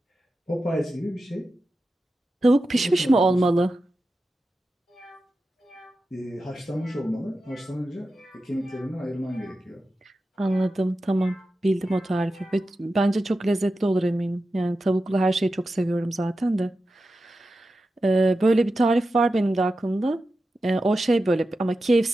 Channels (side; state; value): both; normal; correlation 0.91